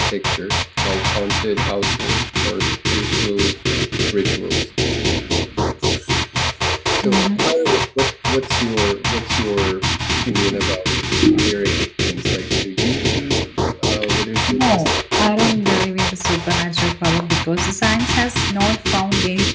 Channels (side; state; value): both; identical; correlation 1.00